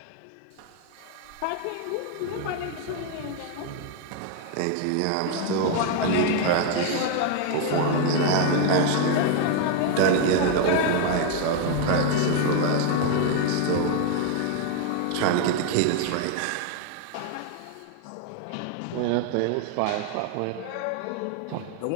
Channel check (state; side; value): different; both; correlation 0.01